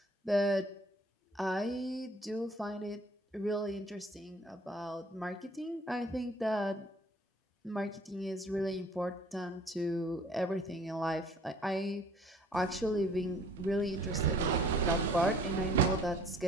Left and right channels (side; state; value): both; normal; correlation 0.54